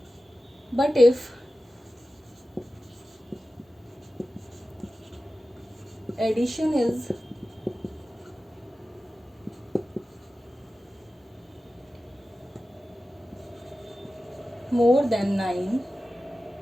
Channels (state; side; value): normal; both; correlation 0.94